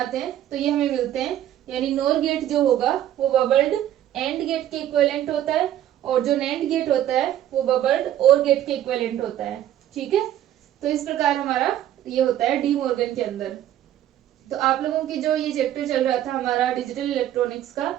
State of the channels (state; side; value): quieter; left; 11.9 dB